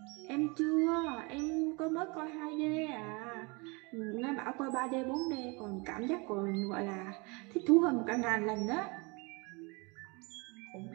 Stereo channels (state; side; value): quieter; left; 29.0 dB